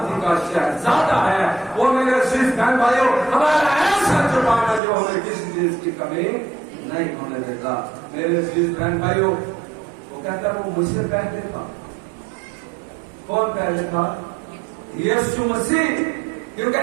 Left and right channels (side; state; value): left; drops out; at 4.8 s